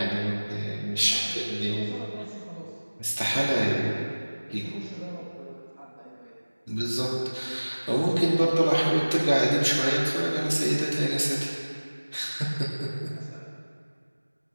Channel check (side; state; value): both; inverted; correlation -1.00